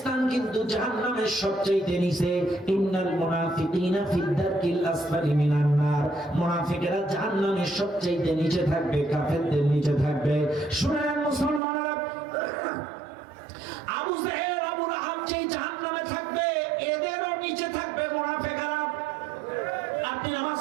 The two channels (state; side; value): drops out; left; at 11.6 s